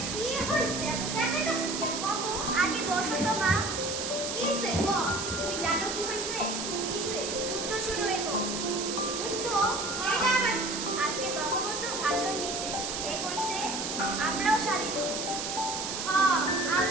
কি হইছে এত জায়গাটাছিস কেন কত আগে বসো তো মা কিসে ক তুমি জানো কি হইছে কিসে যুদ্ধ শুরু হইব যুদ্ধ এটা আবার আজকে বঙ্গবন্ধু ভাষণ দিছে এ কইছে আমরাও স্বাধীন হব হ্যাঁ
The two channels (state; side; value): noise; right; hiss, 4 dB below the sound